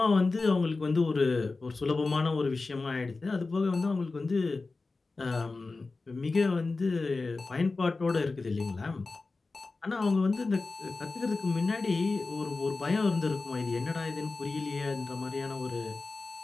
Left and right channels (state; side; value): quieter; right; 3.7 dB